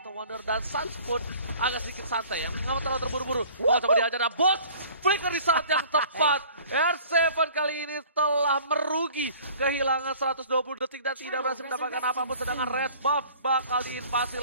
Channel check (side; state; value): both; inverted; correlation -0.49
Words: Wonder, dan Sans pun agak sedikit santai ya. Nggak terlalu terburu-buru. Coba dihajar, dan Boots flicker di saat yang tepat. R7 kali ini telah merugi, kehilangan 120 detik dan tidak berhasil mendapatkan apapun. Sedangkan red buff bakal diinvasi